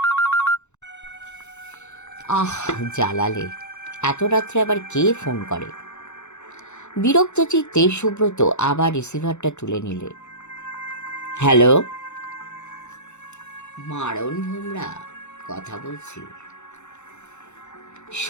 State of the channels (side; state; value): right; late; 0.83 ms